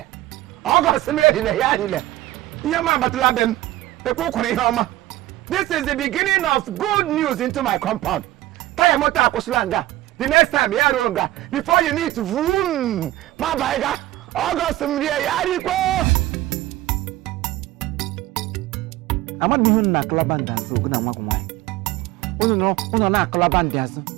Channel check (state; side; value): quieter; left; 16.1 dB